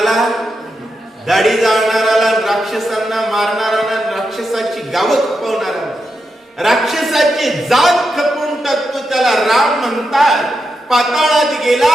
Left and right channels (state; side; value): normal; both; correlation 0.86